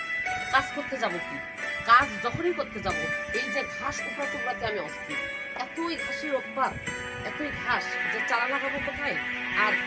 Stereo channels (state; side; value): identical; both; correlation 1.00